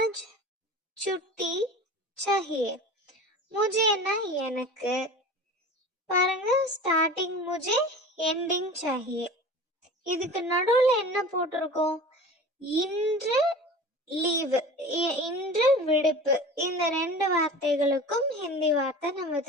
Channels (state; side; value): normal; both; correlation 0.37